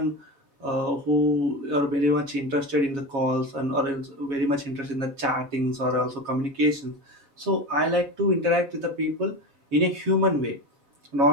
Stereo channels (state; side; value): late; left; 7.3 ms